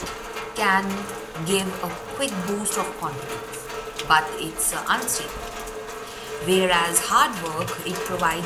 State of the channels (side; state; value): both; identical; correlation 1.00